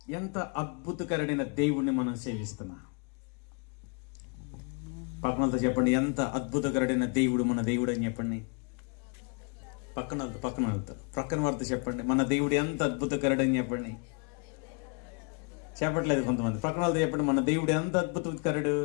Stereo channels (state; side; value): quieter; right; 35.8 dB